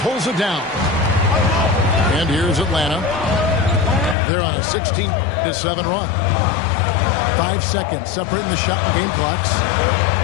it down. And here's Atlanta. They're on a 16-7 run. 5 seconds separating the shot and game clocks.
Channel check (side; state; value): right; drops out; at 4.2 s